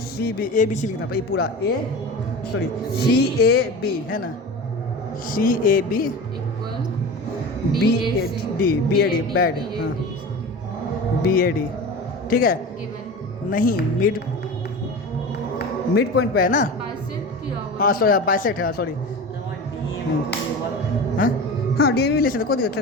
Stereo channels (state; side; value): normal; both; correlation 0.31